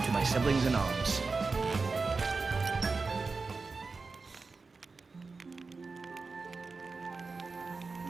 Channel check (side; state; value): left; quieter; 4.2 dB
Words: to my siblings in arms.